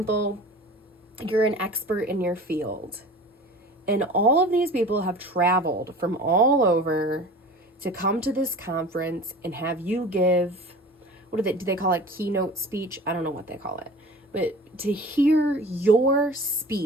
you're an expert in your field, and all of these people have traveled from all over to come to this conference and have you give, do they call it, keynote speech? I don't know what they call it. But to hear your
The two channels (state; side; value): normal; both; correlation 0.40